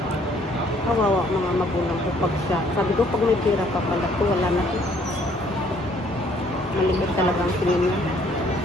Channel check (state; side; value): normal; both; correlation 0.63